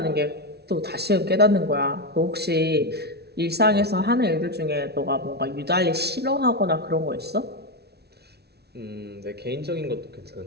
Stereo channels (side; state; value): left; late; 0.48 ms